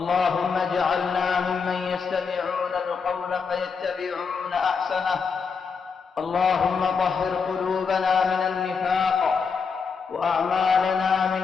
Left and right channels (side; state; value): right; quieter; 5.5 dB